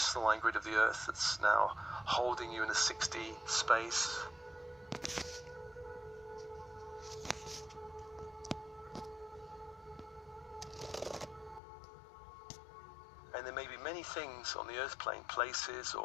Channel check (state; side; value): drops out; right; at 11.6 s